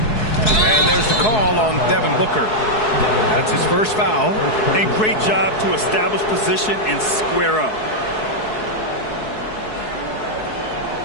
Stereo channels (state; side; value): late; right; 4.7 ms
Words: And there's the call on Devin Booker. That's his first foul. And great job to establish position and square up.